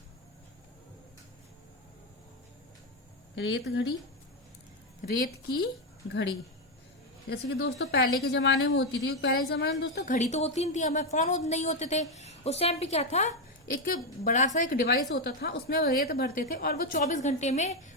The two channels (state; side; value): normal; both; correlation 0.06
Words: रेत घड़ी, रेत की घड़ी। जैसे कि दोस्तों पहले के जमाने में होती थी, पहले के जमाने में दोस्तों घड़ी तो होती नहीं थी, हमें फोन नहीं होते थे। उस टाइम पे क्या था, एक बड़ा सा एक डिवाइस होता था, उसमें रेत भरते थे और वो 24 घंटे में